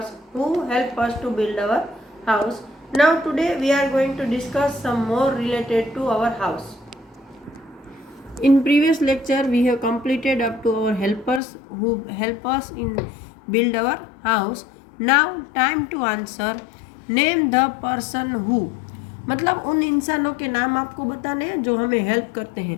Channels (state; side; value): drops out; right; at 11.4 s